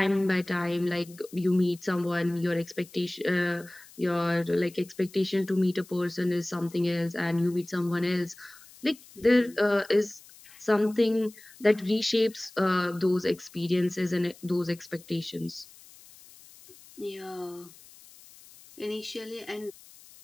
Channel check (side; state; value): left; noise; hiss, 22 dB below the sound